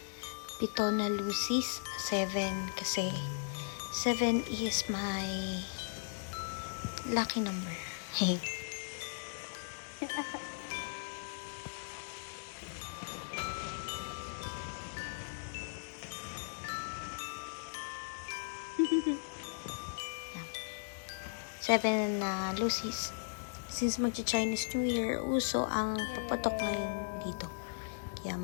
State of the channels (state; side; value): silent; right; digital silence